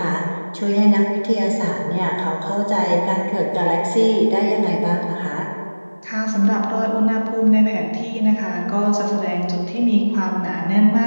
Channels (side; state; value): both; inverted; correlation -1.00